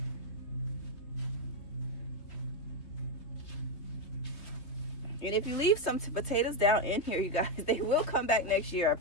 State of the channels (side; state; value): right; late; 3.3 ms